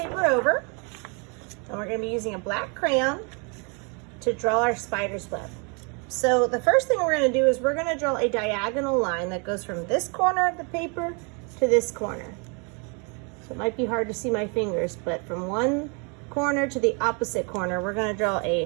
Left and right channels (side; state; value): left; quieter; 34.6 dB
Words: over. And we're going to be using a black crayon to draw our spider's web. So the first thing we're going to do is we're going to draw a diagonal line that goes from this corner of the paper to this corner. So it might be hard to see my fingers, but from one corner to the opposite corner, we're going to draw